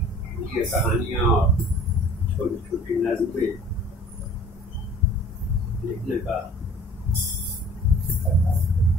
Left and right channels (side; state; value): both; normal; correlation 0.49